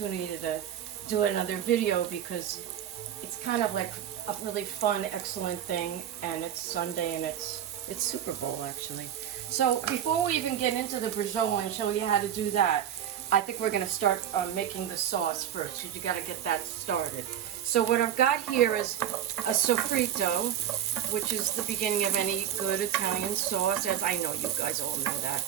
to do another video because it's kind of like a really fun, excellent thing, and it's Sunday and it's Super Bowl actually. So before we even get into the braciole and show you how to do that, I think we're going to start making the sauce first, because you got to get that started. So what I've got here is a sofrito, which is the beginning of any good Italian sauce, as I know you guys all know that.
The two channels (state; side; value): quieter; left; 10.1 dB